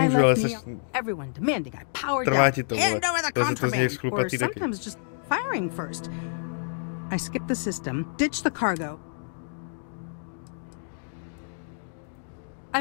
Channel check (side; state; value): right; silent; digital silence